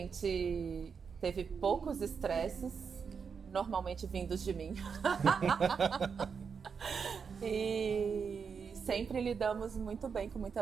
teve poucos estresses, normalmente vindos de mim. E sempre lidamos muito bem, com muita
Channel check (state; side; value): quieter; left; 6.1 dB